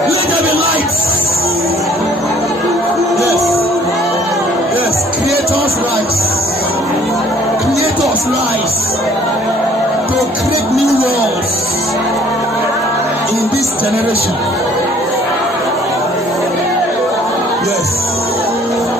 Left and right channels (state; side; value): normal; both; correlation 0.57